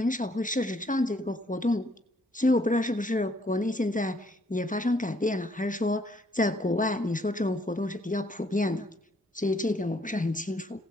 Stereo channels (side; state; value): both; normal; correlation 0.67